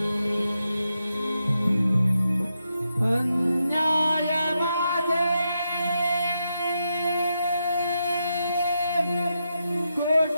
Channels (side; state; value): both; inverted; correlation -0.84